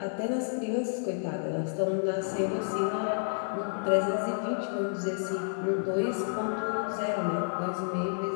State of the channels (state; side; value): silent; right; digital silence